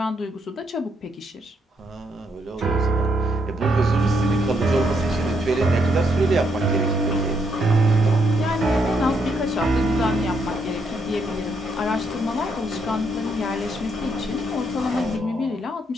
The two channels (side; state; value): both; normal; correlation 0.75